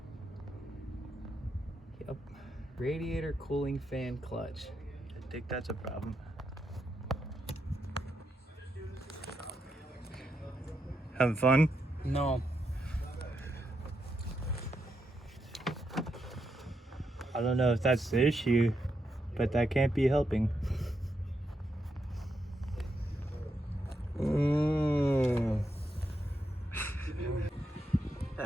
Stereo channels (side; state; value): both; normal; correlation 0.83